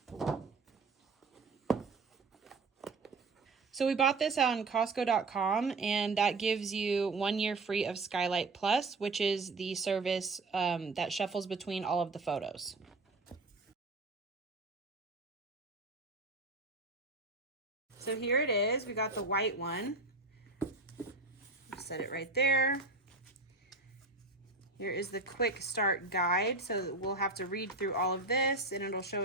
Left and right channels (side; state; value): left; quieter; 3.4 dB